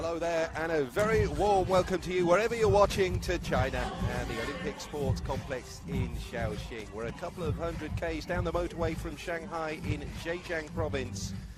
there and a very warm welcome to you wherever you're watching to China and the Olympic Sports Complex in Shaoxing. We're a couple of 100 k's down the motorway from Shanghai in Zhejiang province,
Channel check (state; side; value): identical; both; correlation 1.00